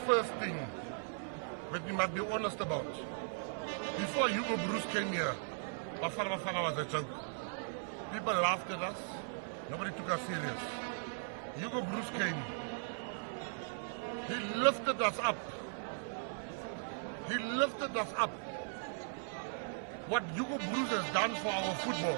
first thing that we must be honest about, before Hugo Broos came here, Bafana was a joke. People laughed at us. Nobody took us serious. Hugo Broos came. He lifted us up. He lifted us up. What Hugo Broos has done for our football,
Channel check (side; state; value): left; silent; 52 dB below the other